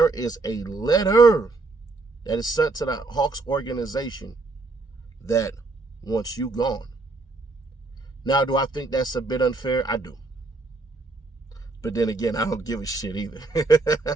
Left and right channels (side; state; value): left; quieter; 3.5 dB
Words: is a letter that is sent to the Hawks organization that wants you gone. Now, do I think that's a bit unfair? I do. But then again, I don't give a shit either.